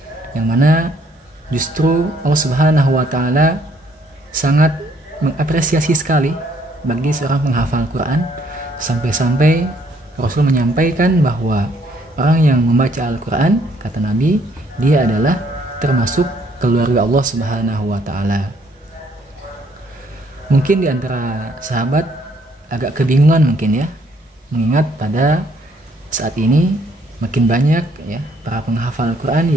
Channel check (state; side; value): normal; both; correlation 0.66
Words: yang mana justru Allah Subhanahu wa taala sangat mengapresiasi sekali bagi seorang penghafal Quran, sampai-sampai Rasul menyampaikan bahwa orang yang membaca Al-Quran, kata Nabi, dia adalah termasuk keluarga Allah Subhanahu wa taala. Mungkin di antara sahabat agak kebingungan mungkin ya, mengingat pada saat ini makin banyak ya para penghafal Quran